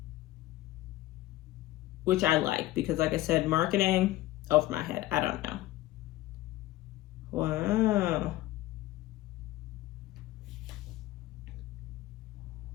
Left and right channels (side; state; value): right; quieter; 16.3 dB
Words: which I like because, like I said, marketing over my head. I don't know. Wow.